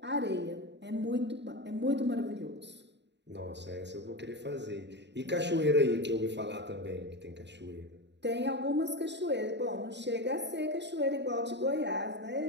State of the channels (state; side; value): late; left; 0.51 ms